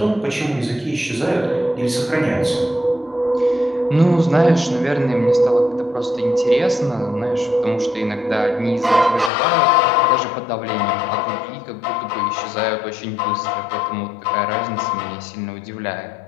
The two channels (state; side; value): drops out; right; at 9.3 s